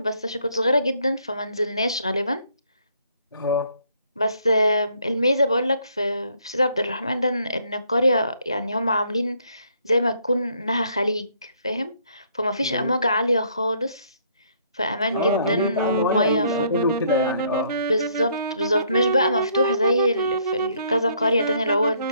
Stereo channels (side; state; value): both; inverted; correlation -0.67